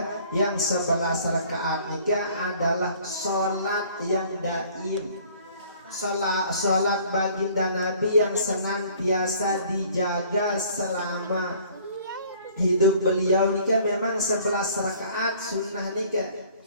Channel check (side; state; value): both; inverted; correlation -0.54